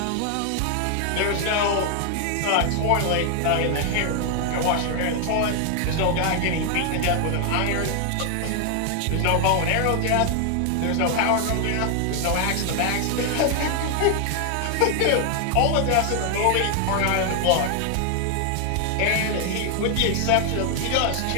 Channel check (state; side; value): different; both; correlation 0.00